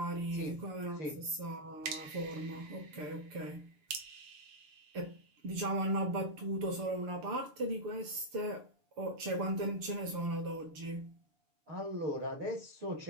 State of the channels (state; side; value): late; left; 6.7 ms